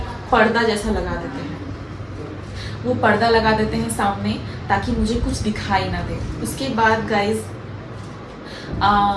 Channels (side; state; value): both; identical; correlation 1.00